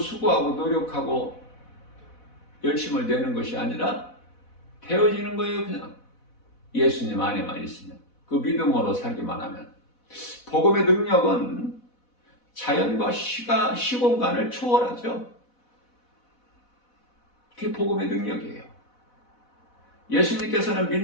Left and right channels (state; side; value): late; right; 4.1 ms